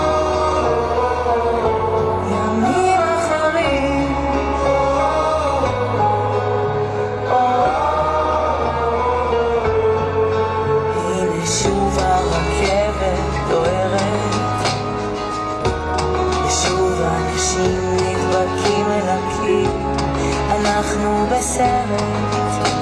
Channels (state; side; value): identical; both; correlation 1.00